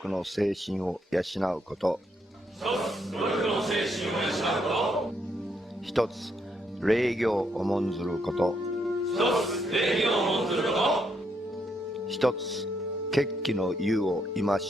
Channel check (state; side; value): normal; both; correlation 0.76